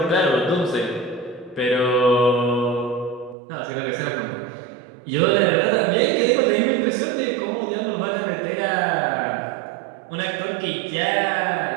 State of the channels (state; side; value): drops out; left; at 3.4 s